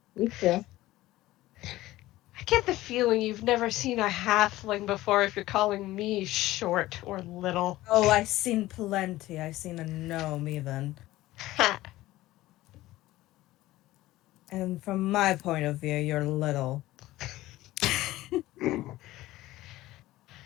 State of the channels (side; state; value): right; quieter; 16.8 dB